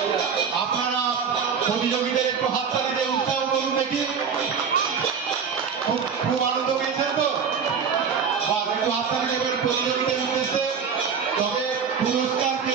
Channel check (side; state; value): left; quieter; 6.4 dB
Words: আপনারা প্রতিযোগীদের একটু হাততালি দিয়ে উৎসাহ করুন দেখি। খুব আনন্দ পেয়েছেন তো? একটু হাততালি দেবেন প্রতিযোগীদের উদ্দেশ্যে। তবে পুরস্কার কে